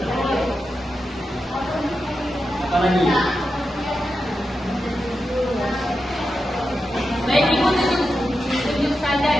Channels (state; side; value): normal; both; correlation 0.89